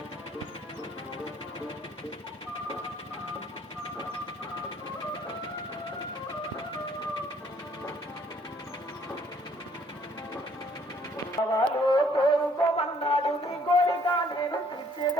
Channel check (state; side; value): normal; both; correlation 0.62